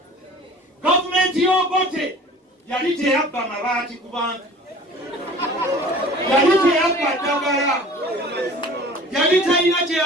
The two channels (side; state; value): both; normal; correlation 0.45